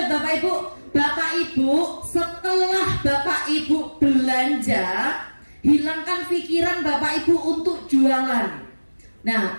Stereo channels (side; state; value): both; inverted; correlation -1.00